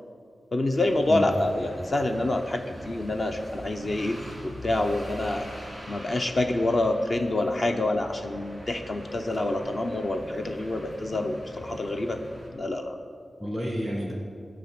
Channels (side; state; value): both; normal; correlation 0.93